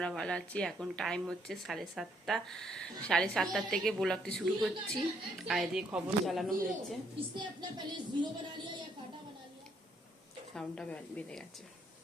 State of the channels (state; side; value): normal; both; correlation 0.70